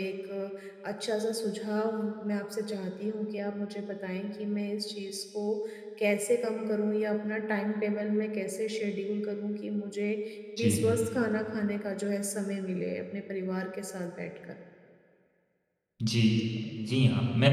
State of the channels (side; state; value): both; identical; correlation 1.00